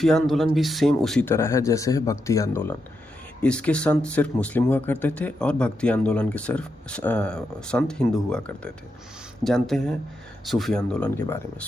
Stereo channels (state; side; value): normal; both; correlation 0.85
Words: आंदोलन भी सेम उसी तरह है जैसे है भक्ति आंदोलन। इसके संत सिर्फ मुस्लिम हुआ करते थे और भक्ति आंदोलन के सिर्फ संत हिंदू हुआ करते थे। जानते हैं सूफी आंदोलन के बारे में।